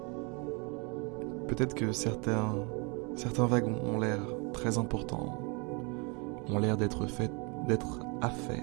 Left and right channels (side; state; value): left; quieter; 31.7 dB